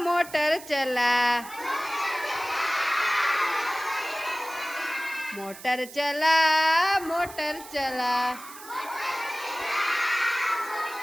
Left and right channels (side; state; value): right; noise; hiss, 16 dB below the sound